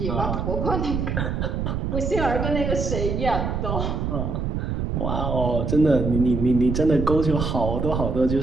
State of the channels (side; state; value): right; noise; rumble, 1 dB below the sound